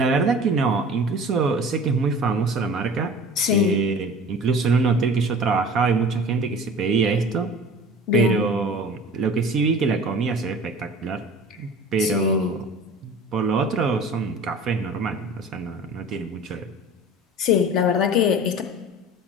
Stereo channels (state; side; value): normal; both; correlation 0.41